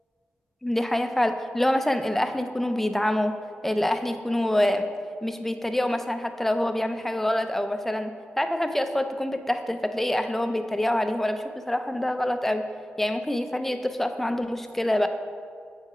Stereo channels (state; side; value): normal; both; correlation 0.97